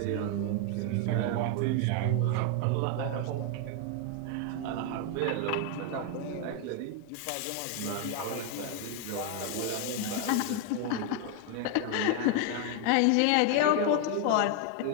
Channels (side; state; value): both; different; correlation 0.01